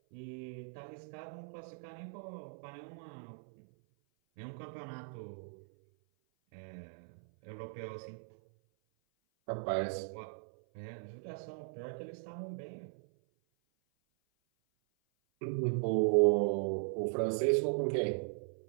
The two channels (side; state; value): left; silent; 52 dB below the other